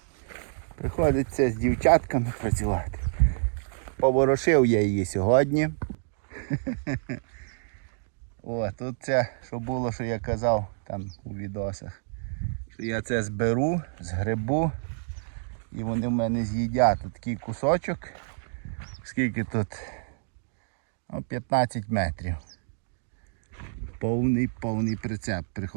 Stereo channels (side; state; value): left; silent; digital silence